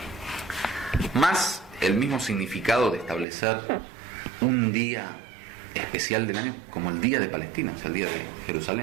Más el mismo significado de establecer un día especial del año como el Día de Palestina, o sea, el Día de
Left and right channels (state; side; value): drops out; left; at 3.2 s